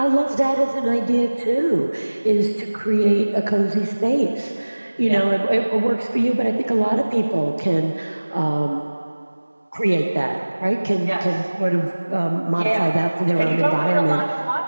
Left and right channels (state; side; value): inverted; both; correlation -1.00